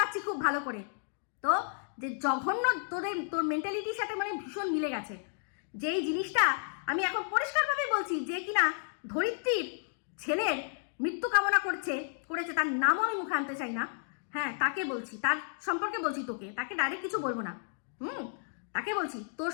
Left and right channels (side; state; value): right; silent; digital silence